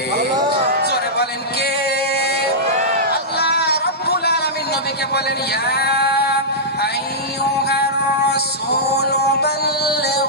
জোরে বলেন কে? আল্লাহ রাব্বুল আলামিন নবীকে বলেন, ইয়া আইয়ুহার রাসূল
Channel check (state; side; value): normal; both; correlation -0.13